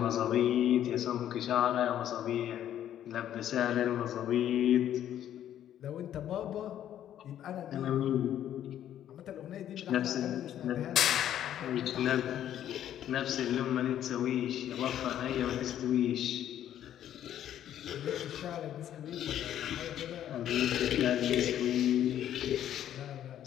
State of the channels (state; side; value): quieter; right; 11.0 dB